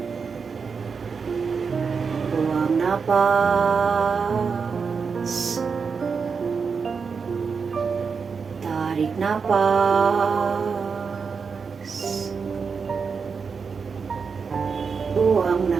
buang napas, tarik napas, buang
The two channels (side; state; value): left; quieter; 5.5 dB